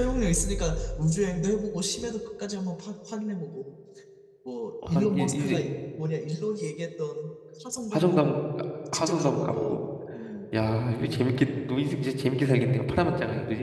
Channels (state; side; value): identical; both; correlation 1.00